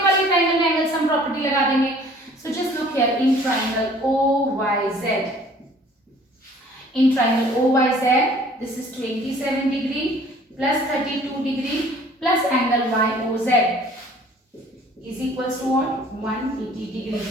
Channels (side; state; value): both; normal; correlation 0.53